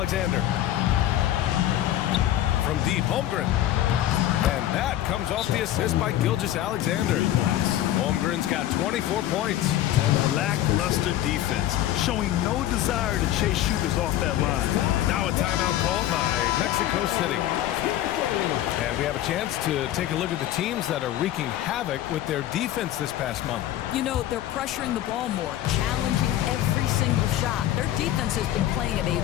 From deep, Holmgren. And that comes off the assist by Gilgeous-Alexander. Holmgren's got 24 points. Lackluster defense, showing no desire to chase shooters off that line. Now a timeout called by Mexico City. And we have a chance to take a look at the teams that are wreaking havoc with their defense this past month. You know, they're pressuring the ball more, challenging every single shot. Their defense has been playing at a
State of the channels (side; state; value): right; quieter; 13.0 dB